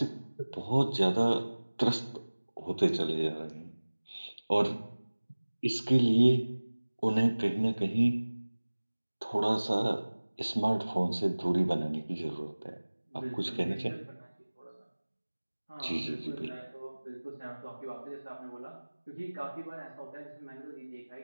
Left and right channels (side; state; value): both; inverted; correlation -1.00